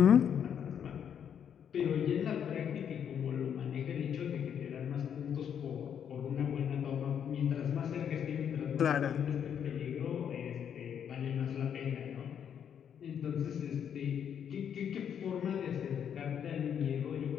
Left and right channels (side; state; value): right; quieter; 8.4 dB